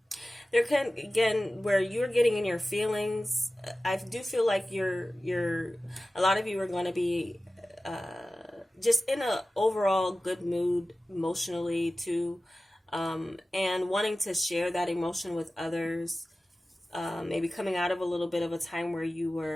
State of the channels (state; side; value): normal; both; correlation 0.96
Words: there can, again, where you're getting in your feelings, I do feel like a lot of you are going to be just in a overall good mood emotionally too, and wanting to share that emotion with others. Maybe coming out of a little bit of a time where you